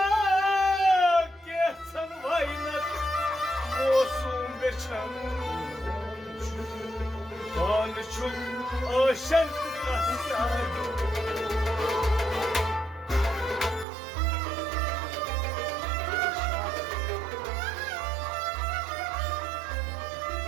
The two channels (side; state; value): left; drops out; at 13.9 s